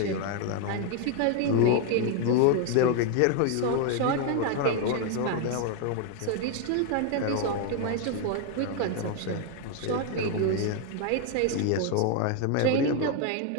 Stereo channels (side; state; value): both; different; correlation 0.01